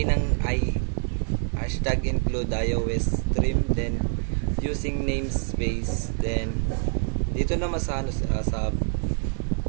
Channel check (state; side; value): silent; left; 61 dB below the other